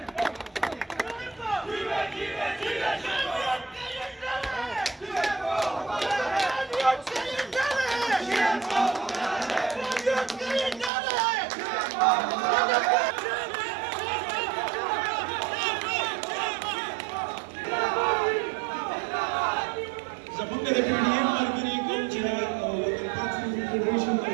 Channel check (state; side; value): drops out; left; at 10.9 s